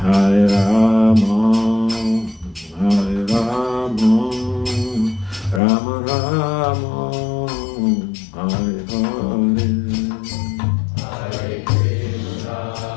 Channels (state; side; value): drops out; right; at 5.6 s